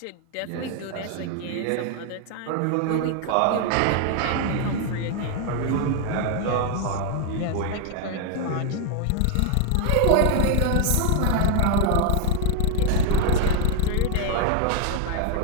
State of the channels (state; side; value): different; both; correlation 0.01